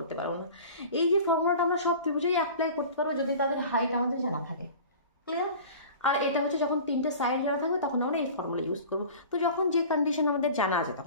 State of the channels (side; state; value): both; inverted; correlation -0.40